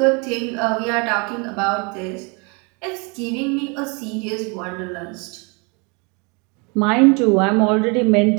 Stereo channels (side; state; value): left; quieter; 31.7 dB